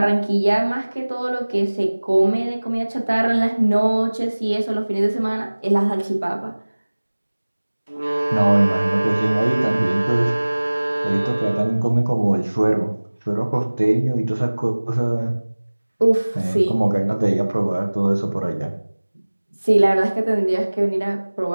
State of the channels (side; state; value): both; inverted; correlation -1.00